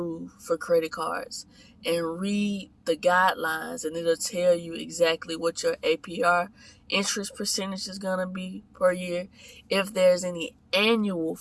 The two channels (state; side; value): identical; both; correlation 1.00